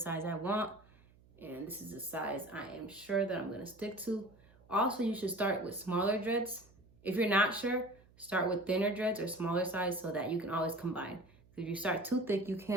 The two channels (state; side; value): noise; right; hum, 27 dB below the sound